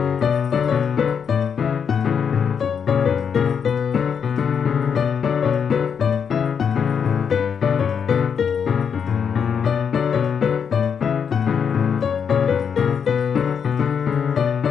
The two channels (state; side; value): quieter; right; 7.0 dB